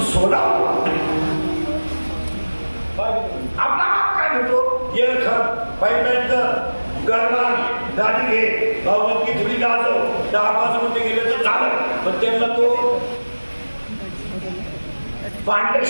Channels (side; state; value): both; inverted; correlation -1.00